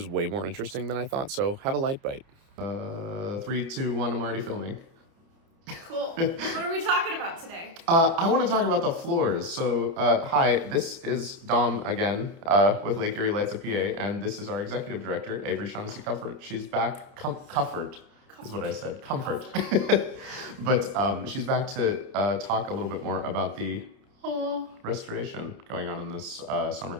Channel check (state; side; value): late; left; 30 ms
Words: way more interesting than I thought, so have a light bite. 3, 2, 1, I'm already filming. Cool. What are we talking about today? I want to talk about the floors. So, hi, this is Dom again with Lake Erie Lights of PA, and this is our executive director, Averie Teaches Dom. She's back. Comfort is what I said. Comfort. But she's back to talk a little bit more about the restoration going on in this summer